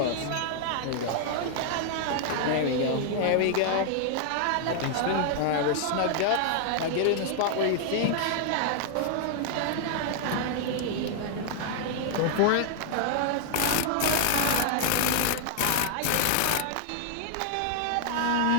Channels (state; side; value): different; both; correlation -0.01